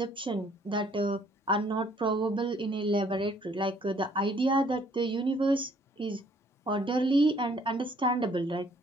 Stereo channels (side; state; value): both; normal; correlation 0.62